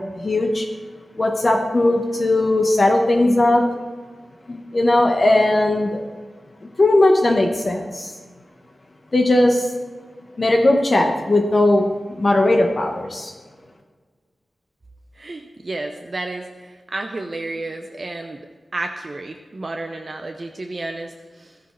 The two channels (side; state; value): both; normal; correlation 0.95